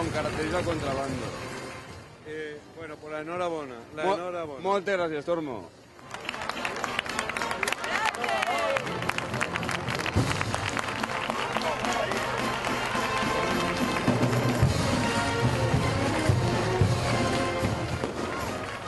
característica contrabando. Bueno, pues la enhorabona, la enhorabona. Moltes gràcies, Tormo. Gràcies!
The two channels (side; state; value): both; identical; correlation 1.00